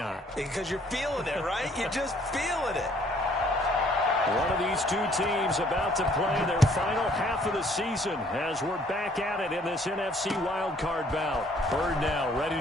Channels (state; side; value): normal; both; correlation 0.61